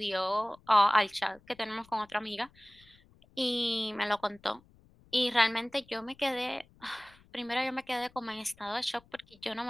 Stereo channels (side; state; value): left; noise; rumble, 28 dB below the sound